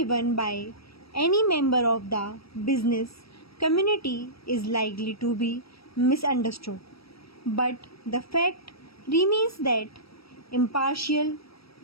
by any member of the business community is likely to be misunderstood. But the fact remains that impartial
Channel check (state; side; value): late; right; 0.76 ms